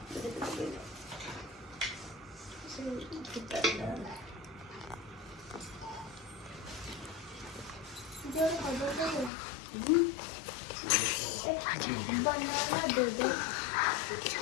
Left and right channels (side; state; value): right; drops out; at 9.3 s